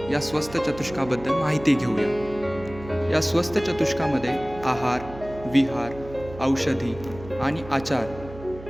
या स्वस्थ चतुष्काबद्दल माहिती घेऊया. या स्वस्थ चतुष्कामध्ये आहार, विहार, औषधी आणि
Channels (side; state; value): right; noise; hum, 15 dB below the sound